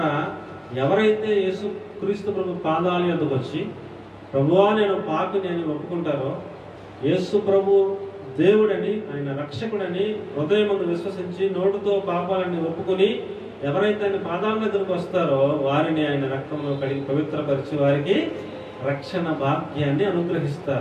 ఎవరైతే యేసుక్రీస్తు ప్రభు పాదాల యొద్దకు వచ్చి ప్రభువా నేను పాపిని అని ఒప్పుకుంటారో, యేసు ప్రభు దేవుడని ఆయన రక్షకుడని హృదయమును విశ్వసించి నోటితో పాపాలని ఒప్పుకొని ఎవరైతే ఆయన పాదాల దగ్గరకు వస్తారో వారిని ఆయన రక్తంలో కడిగి పవిత్రపరిచి వారికి రక్షణ భాగ్యాన్ని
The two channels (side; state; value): both; identical; correlation 1.00